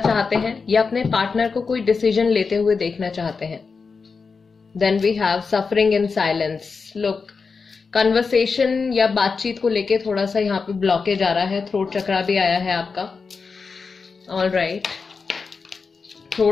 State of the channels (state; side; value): quieter; right; 4.9 dB